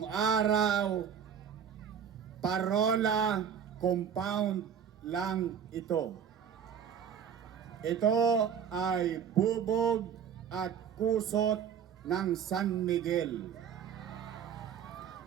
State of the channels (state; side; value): quieter; left; 7.9 dB